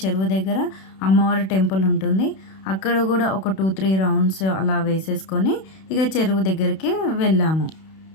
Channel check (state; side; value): late; right; 31 ms